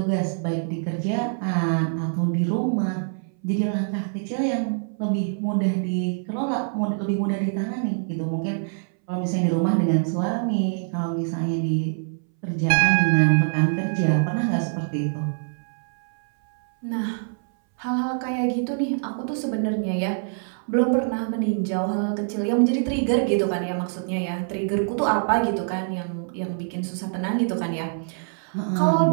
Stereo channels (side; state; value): left; silent; 62 dB below the other